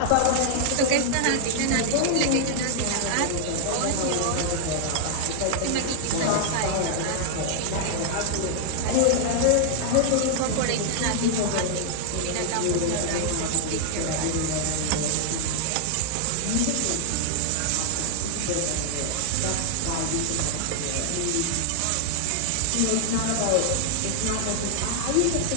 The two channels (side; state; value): both; different; correlation -0.01